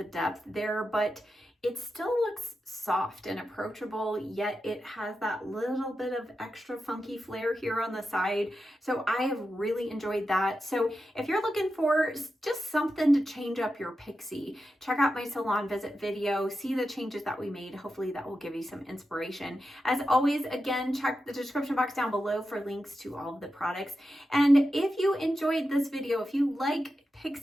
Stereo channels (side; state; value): both; normal; correlation 0.90